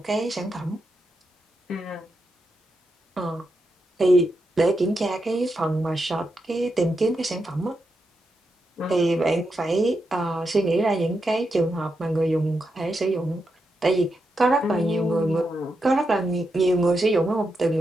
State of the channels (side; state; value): both; normal; correlation 0.85